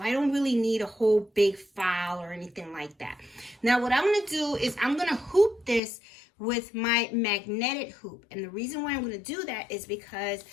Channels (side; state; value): right; drops out; at 5.8 s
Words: don't really need a whole big file or anything like that. Now what I'm going to do is I'm going to hoop this with my magnetic hoop. And the reason why I'm going to do that is because